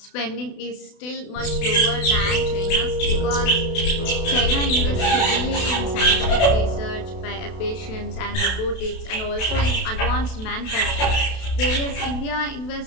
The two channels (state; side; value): late; right; 32 ms